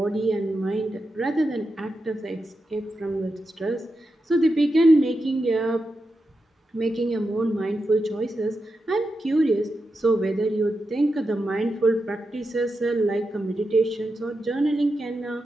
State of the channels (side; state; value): both; normal; correlation 0.88